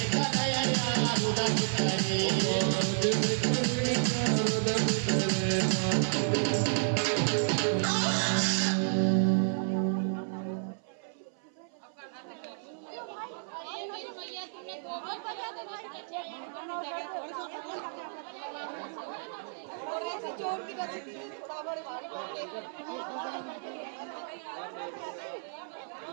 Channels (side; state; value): left; silent; 57 dB below the other